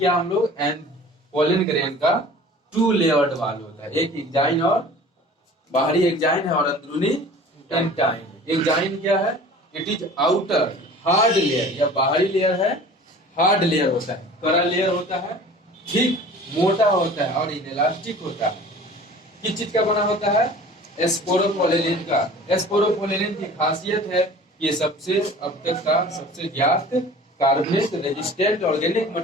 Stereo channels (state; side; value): normal; both; correlation 0.44